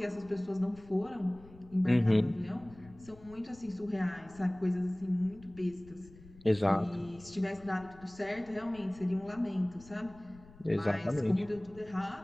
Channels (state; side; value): noise; left; rumble, 22 dB below the sound